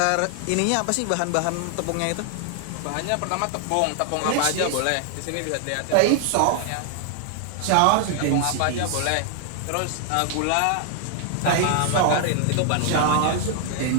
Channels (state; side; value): different; both; correlation 0.00